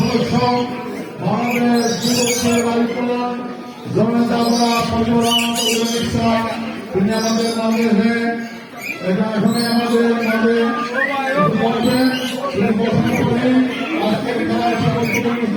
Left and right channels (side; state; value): both; identical; correlation 1.00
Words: বাংলাদেশ যুবকের বাড়িকরণ জনতা তিনি আমাদের মাঝে এখানে আমাদের মাঝে